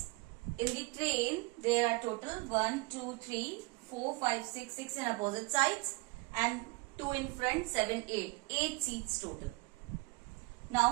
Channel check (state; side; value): quieter; left; 26.2 dB